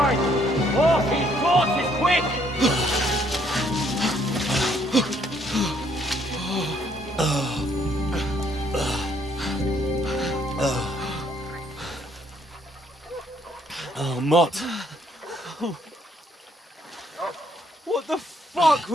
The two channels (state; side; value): normal; both; correlation 0.68